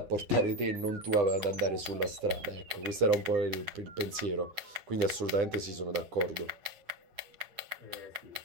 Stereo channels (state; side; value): late; left; 9.9 ms